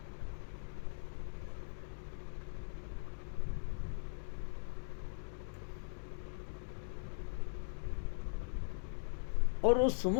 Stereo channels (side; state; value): right; silent; digital silence